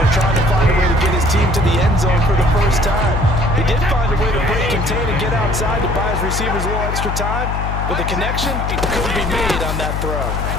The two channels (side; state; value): left; noise; hum, 2 dB below the sound